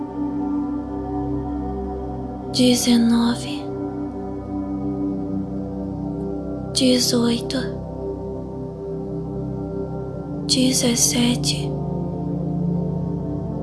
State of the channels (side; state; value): both; identical; correlation 1.00